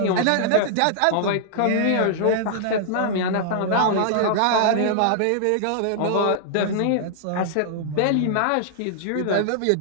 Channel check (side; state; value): both; different; correlation -0.01